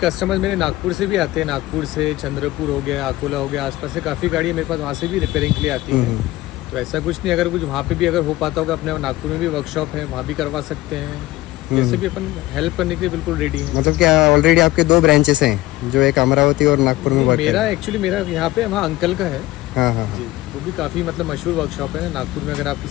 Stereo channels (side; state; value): right; quieter; 17.6 dB